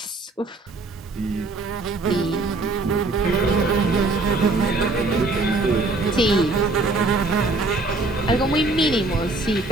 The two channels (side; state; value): left; quieter; 3.3 dB